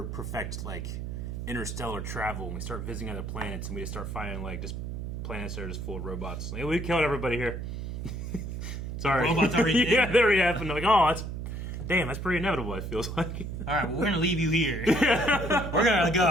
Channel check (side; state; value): right; noise; hum, 6 dB below the sound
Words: perfect like interstellar travel and we start visiting other planets and we just start finding like just planets that are just full of robots. Like, we killed everybody here. Sorry. Robots already did? Yeah, they already happened. Like, oh, that's pretty inevitable. It feels like. All right, well, we're gonna leave you here. We're gonna